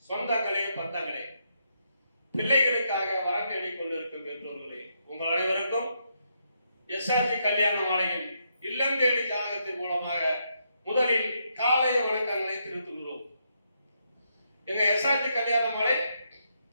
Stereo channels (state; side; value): inverted; both; correlation -0.79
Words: சொந்தங்களே, பந்தங்களே, பிள்ளைகளுக்காக வரம் தேடிக் கொண்டிருக்கும் பெற்றோர்களே, உங்கள் அனைவருக்கும் எஸ்ஆர்ஜி கல்யாண மாலையின் இல்லம் தேடி ஜாதகத்தின் மூலமாக முதலில் காலை வணக்கங்களை தெரிவித்துக் கொள்கிறோம். எங்க எஸ்ஆர்ஜி கல்யாண மாலை